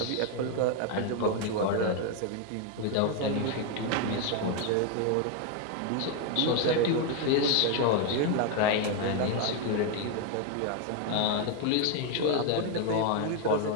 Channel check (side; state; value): both; different; correlation 0.01